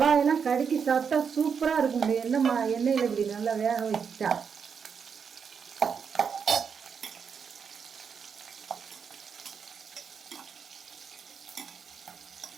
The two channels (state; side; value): quieter; left; 6.5 dB